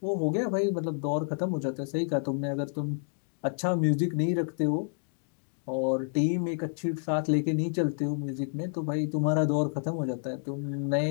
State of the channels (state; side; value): silent; right; digital silence